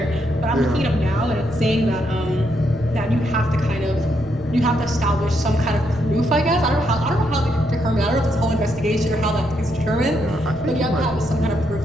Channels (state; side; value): noise; right; rumble, 18 dB below the sound